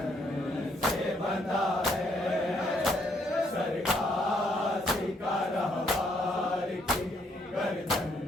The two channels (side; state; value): both; normal; correlation 0.71